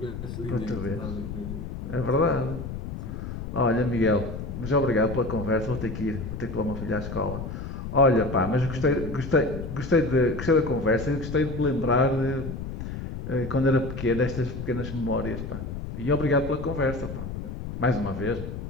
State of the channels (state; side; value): noise; left; rumble, 7 dB below the sound